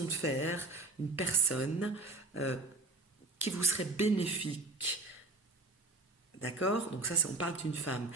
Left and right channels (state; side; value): quieter; left; 3.1 dB